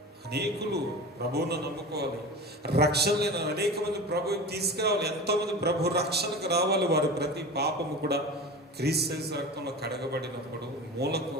అనేకులు ప్రభువును నమ్ముకోవాలి, రక్షణ లేని అనేక మంది ప్రభువుని తీసుకురావాలి, ఎంతోమంది ప్రభు రక్షణకు రావాలి. వారి ప్రతి పాపము కూడా క్రీస్తు రక్తంలో కడగబడినప్పుడు మూలకు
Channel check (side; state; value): both; normal; correlation 0.32